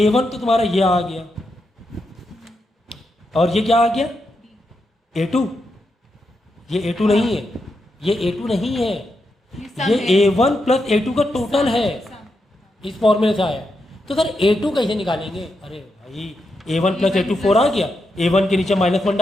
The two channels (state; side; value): normal; both; correlation 0.84